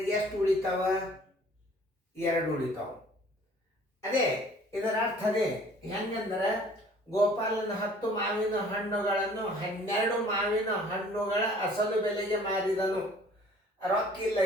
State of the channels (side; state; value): both; normal; correlation 0.53